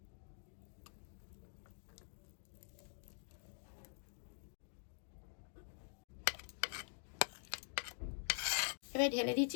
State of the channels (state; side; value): silent; right; digital silence